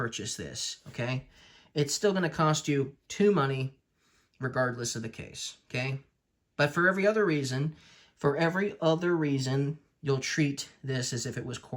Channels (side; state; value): both; identical; correlation 1.00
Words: this, okay? It's still going to cost you 2 money regardless of the case, okay? But for every other reason, you'll treat this as if it was